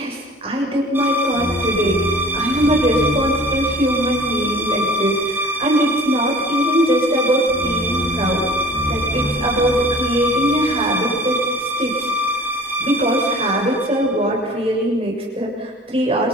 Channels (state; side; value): normal; both; correlation 0.46